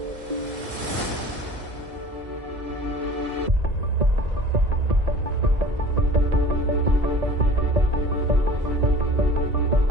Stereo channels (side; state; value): left; late; 1.9 ms